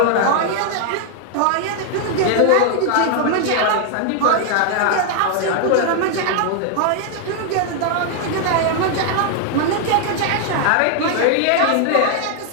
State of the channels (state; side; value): different; both; correlation 0.00